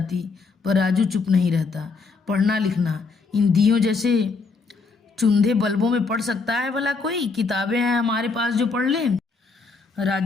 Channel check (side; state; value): right; quieter; 4.4 dB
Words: पर राजू चुप नहीं रहता। पढ़ना लिखना इन दियों जैसे चुंधे बल्बों में पढ़ सकता है भला कोई? किताबें हैं हमारे पास जो पढ़ लें।